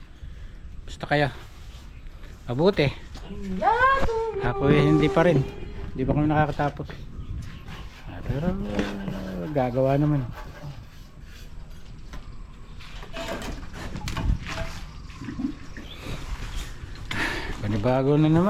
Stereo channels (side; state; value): both; identical; correlation 1.00